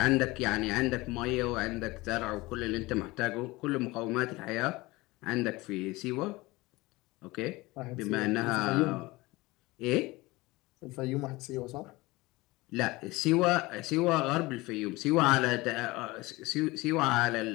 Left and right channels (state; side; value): quieter; right; 21.4 dB